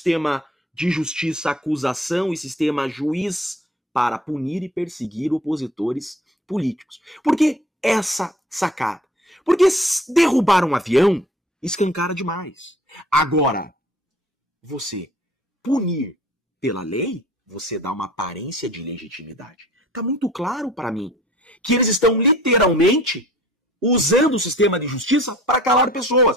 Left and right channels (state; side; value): normal; both; correlation 0.50